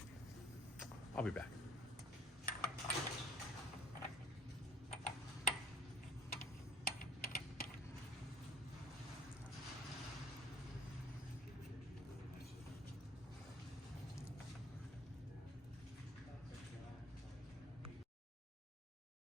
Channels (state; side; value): normal; both; correlation 0.54